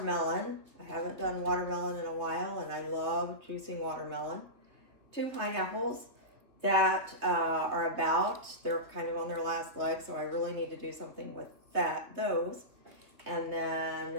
I haven't done watermelon in a while, and I love juicing watermelon. 2 pineapples that they're kind of on their last leg, so I really need to do something with those. And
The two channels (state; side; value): late; left; 3.0 ms